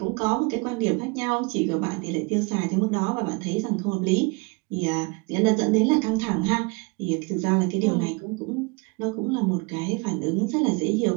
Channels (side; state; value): left; quieter; 28.4 dB